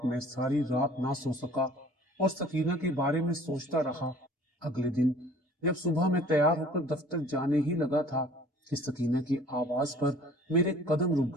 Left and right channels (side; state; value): both; normal; correlation 0.50